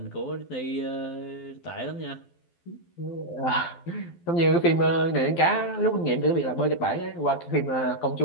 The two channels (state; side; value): late; right; 12 ms